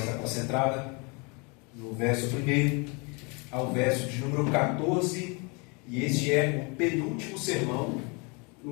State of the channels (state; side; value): quieter; right; 31.2 dB